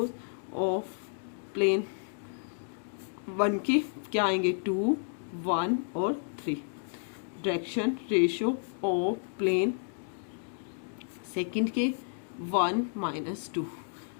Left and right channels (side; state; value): right; silent; digital silence